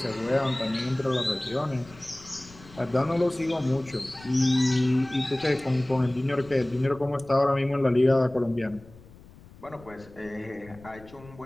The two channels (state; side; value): noise; left; rumble, 21 dB below the sound